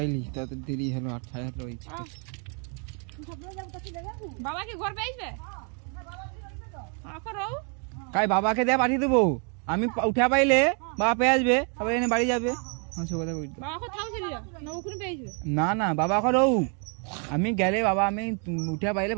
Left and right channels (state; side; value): quieter; left; 39.2 dB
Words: त देरी हलो 8 साढ़े 8 रही तू सब जब कथि देगा बाबा के घर पे आइबे हां बाबा के घर पे तो आखो रहू কাই বাবাকে দে পাঠিয়ে দেবো আমি উঠা পাইলে বাবা পেয়ে আসবে তবে এনে বাড়ি যাবে হ্যাঁ সে কথা কই বাবা কো থাও ছিল না ওখানে পেয়ে আসবে না না বাবা কো রও আমি গেলে বাবা আমি উঠা পাইলে